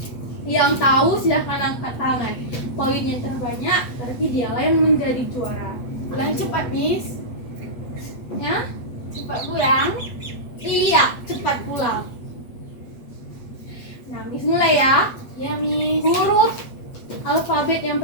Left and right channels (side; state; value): right; late; 8.2 ms